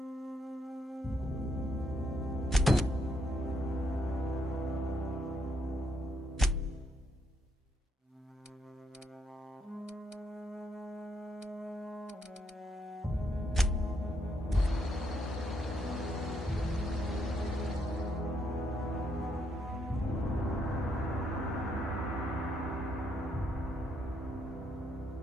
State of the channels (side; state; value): both; normal; correlation 0.76